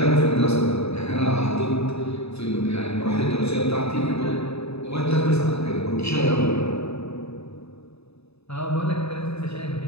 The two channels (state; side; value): late; right; 0.79 ms